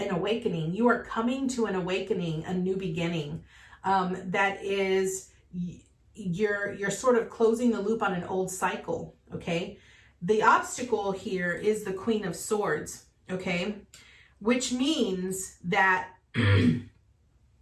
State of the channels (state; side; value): identical; both; correlation 1.00